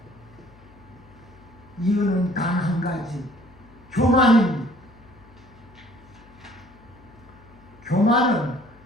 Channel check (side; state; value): left; noise; hum, 25 dB below the sound